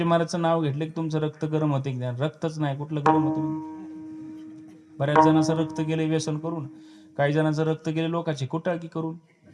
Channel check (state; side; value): identical; both; correlation 1.00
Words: महाराजचं नाव घेतलं की तुमचं रक्त गरम होते. रक्तच नाही, कुठलं गरम होतं? बऱ्याच जणांचं रक्त गेले व्यसन करून, काही जणांचं रक्त गेले लोकांची कुटाळकी करून.